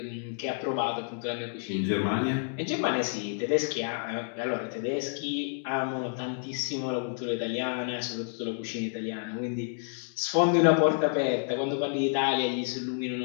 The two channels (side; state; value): right; silent; digital silence